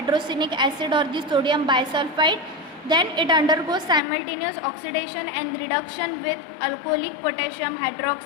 acid or the sodium bisulfite. Then it undergoes simultaneous oxidation and reduction with alcoholic potassium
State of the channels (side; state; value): right; drops out; at 4.0 s